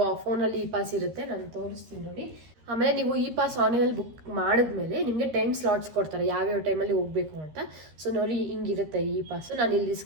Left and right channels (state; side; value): late; left; 13 ms